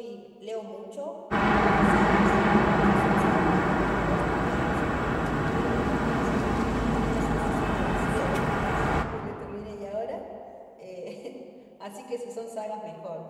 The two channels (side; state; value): both; identical; correlation 1.00